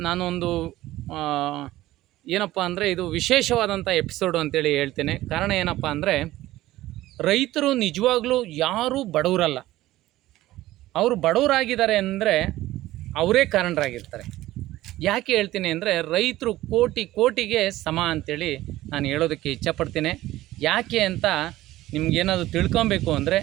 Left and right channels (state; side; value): quieter; left; 16.0 dB